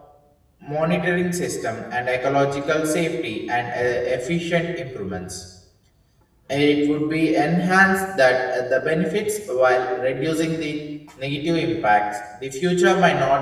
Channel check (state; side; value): identical; both; correlation 1.00